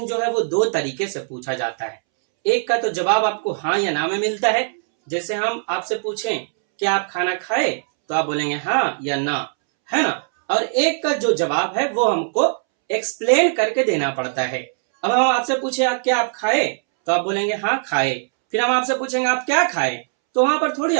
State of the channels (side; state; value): left; silent; 65 dB below the other